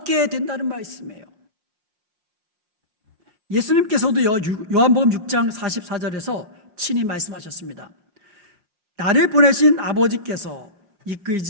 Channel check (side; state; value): left; late; 5.6 ms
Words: 된다는 말씀이에요. 예수님께서도요, 요한복음 6장 44절에서 친히 말씀하셨습니다. 나를 보내신 아버지께서